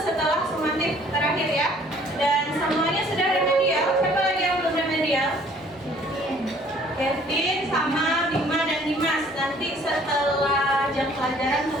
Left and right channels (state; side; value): normal; both; correlation 0.57